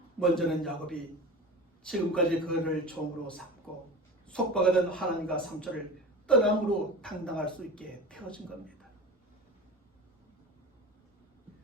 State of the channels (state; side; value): normal; both; correlation 0.32